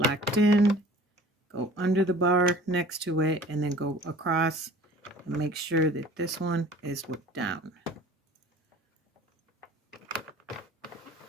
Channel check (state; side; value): normal; both; correlation 0.47